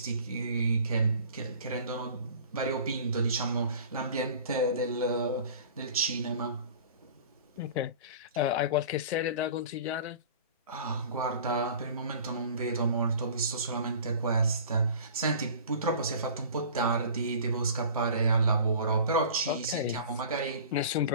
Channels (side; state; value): both; inverted; correlation -0.42